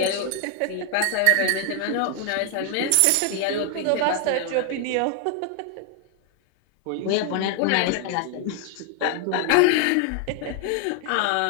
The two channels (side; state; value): both; different; correlation 0.00